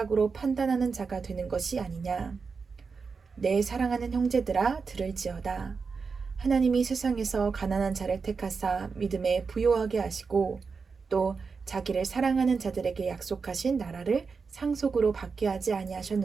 판단하는 자가 되는 것이 아니냐. 내 사랑하는 형제들아, 들을지어다. 하나님이 세상에서 가난한 자를 택하사 믿음에 부요하게 하시고 또 자기를 사랑하는 자들에게 약속하신 나라를 상속으로 받게 하지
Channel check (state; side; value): quieter; left; 5.0 dB